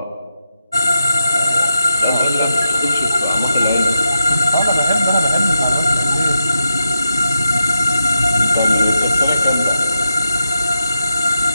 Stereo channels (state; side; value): inverted; both; correlation -0.86